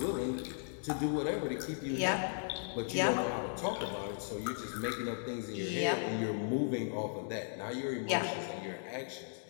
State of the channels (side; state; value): right; silent; digital silence